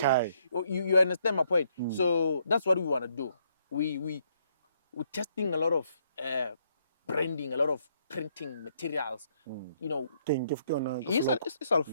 You understand my point? So that's what we want to do. We're testing a lot of branding, a lot of printing materials. You know, it's all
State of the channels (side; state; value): both; inverted; correlation -0.71